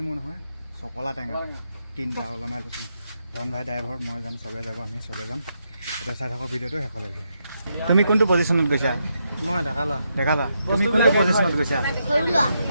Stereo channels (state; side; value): inverted; both; correlation -0.81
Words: নহয়, চকলা টেঙা 3টা ওলমাই লৈছোঁ। ধন ভাই ড্ৰাইভাৰ, মই যাম, চবে যাব, আমি চবে যাম। এতিয়া চাই থাকক ভিডিঅ'টো শেষলৈকে। তুমি কোনটো পজিশ্যনত গৈছা? মই ডেকালা। তুমি কোনটো পজিশ্যনত গৈছা?